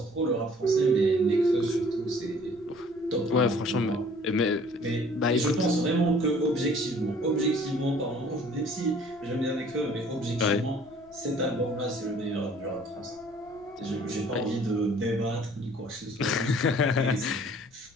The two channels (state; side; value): noise; left; rumble, 29 dB below the sound